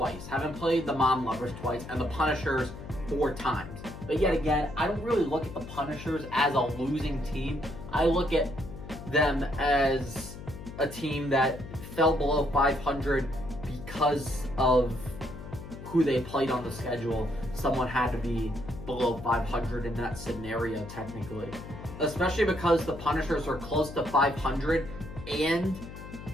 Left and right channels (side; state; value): left; noise; hum, 12 dB below the sound